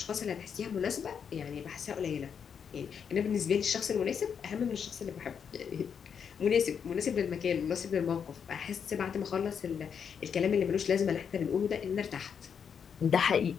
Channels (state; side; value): quieter; right; 7.2 dB